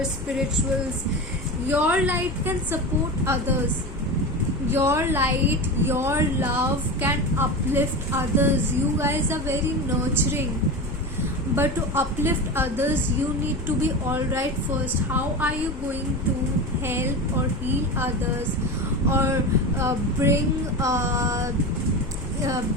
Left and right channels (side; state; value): both; normal; correlation 0.25